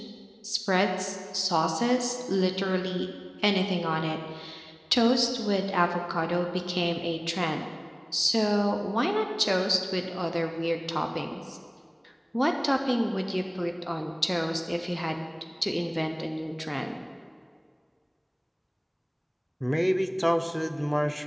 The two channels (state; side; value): identical; both; correlation 1.00